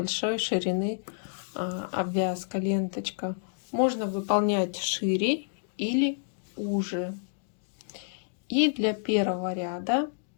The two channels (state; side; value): silent; right; digital silence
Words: ширины обвязка, ленточка. Можно выполнять шире или уже. И для 1-го ряда